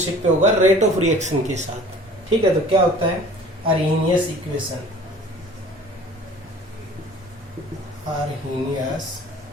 पे होगा रेट ऑफ रिएक्शन के साथ। ठीक है, तो क्या होता है अरेनियस इक्वेशन। अरेनियस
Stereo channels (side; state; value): both; normal; correlation 0.47